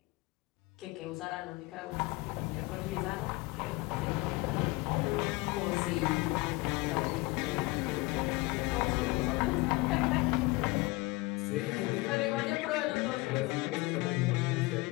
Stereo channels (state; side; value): quieter; right; 22.8 dB